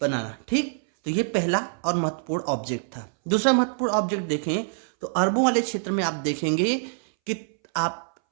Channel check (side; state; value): left; silent; 61 dB below the other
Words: बनाना। ठीक, तो ये पहला और महत्वपूर्ण ऑब्जेक्ट था। दूसरा महत्वपूर्ण ऑब्जेक्ट देखें तो अरबों वाले क्षेत्र में आप देखेंगे कि आप